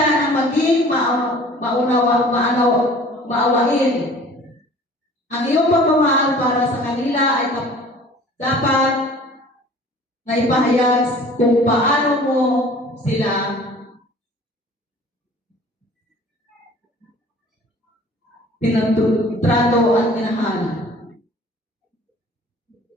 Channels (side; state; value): both; normal; correlation 0.48